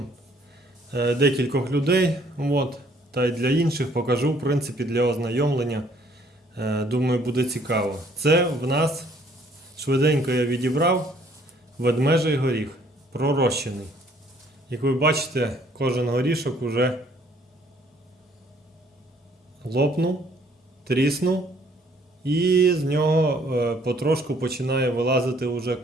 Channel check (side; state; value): both; normal; correlation 0.62